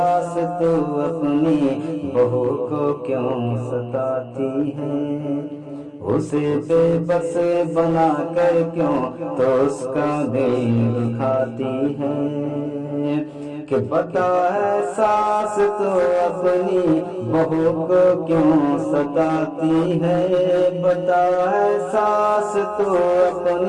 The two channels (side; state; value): both; identical; correlation 1.00